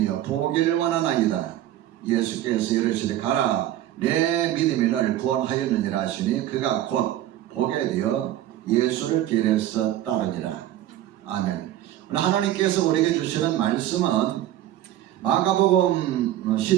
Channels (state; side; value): quieter; left; 13.0 dB